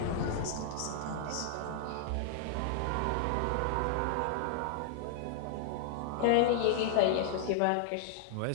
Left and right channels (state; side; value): different; both; correlation -0.01